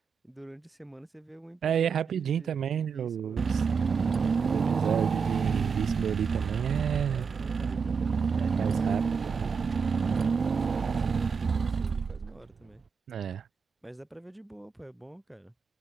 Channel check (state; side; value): quieter; left; 5.8 dB